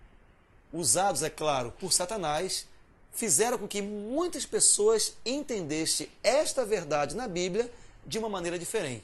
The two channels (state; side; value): identical; both; correlation 1.00